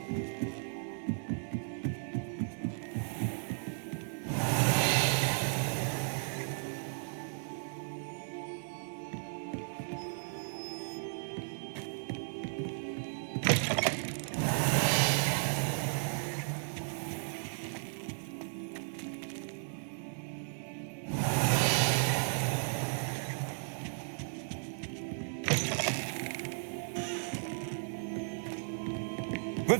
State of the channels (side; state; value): left; silent; 54 dB below the other